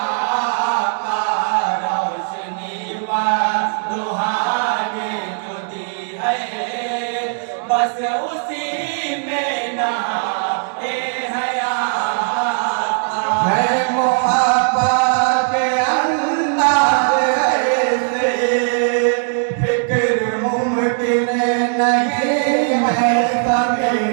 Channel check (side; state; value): left; silent; 64 dB below the other